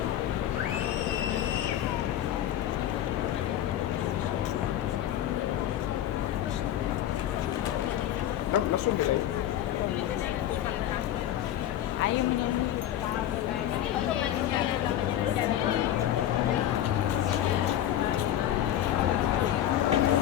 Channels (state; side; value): quieter; right; 11.9 dB